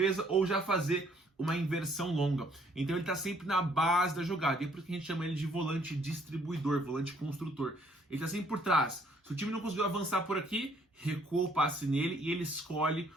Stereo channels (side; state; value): both; normal; correlation 0.65